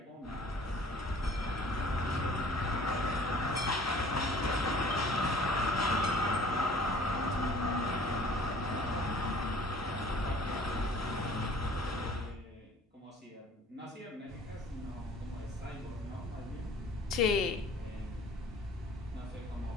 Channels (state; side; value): normal; both; correlation 0.51